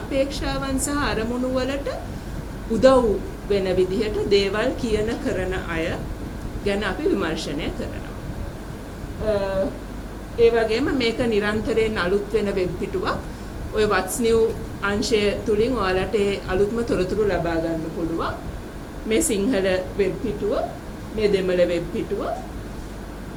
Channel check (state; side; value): identical; both; correlation 1.00